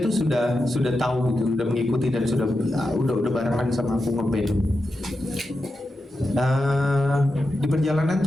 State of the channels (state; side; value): normal; both; correlation 0.89